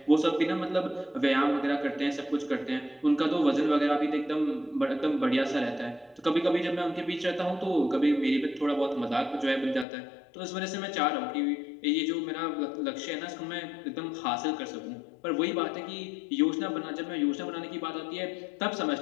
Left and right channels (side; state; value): right; drops out; at 9.9 s